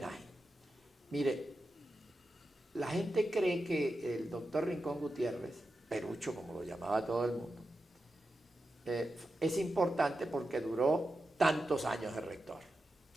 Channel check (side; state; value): both; normal; correlation 0.90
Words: Mire, la gente cree que el doctor Rincón Gutiérrez, Perucho como lo llamaba todo el mundo, es importante porque duró tantos años de rector.